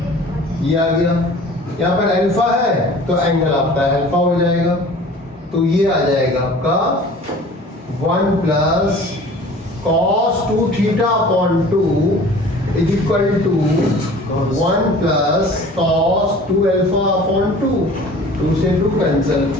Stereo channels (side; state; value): both; normal; correlation 0.45